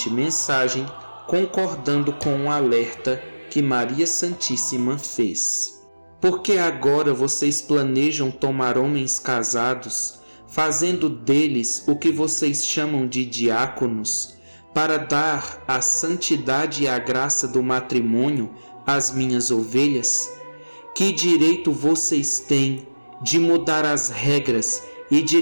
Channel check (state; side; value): inverted; both; correlation -1.00